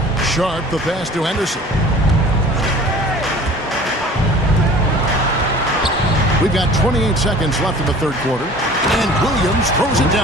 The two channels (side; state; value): both; normal; correlation 0.45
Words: Sharp, the pass to Henderson. We've got 28 seconds left in the third quarter. And Williams throws it